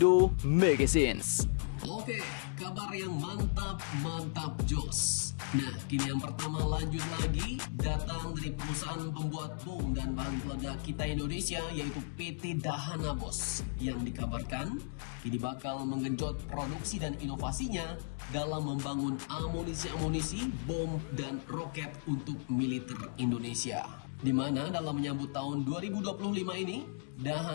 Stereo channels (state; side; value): silent; right; digital silence